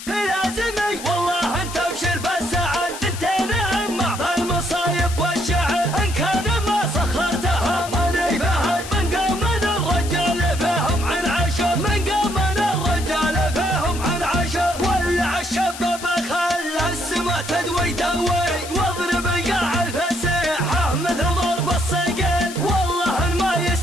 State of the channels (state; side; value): noise; left; hiss, 11 dB below the sound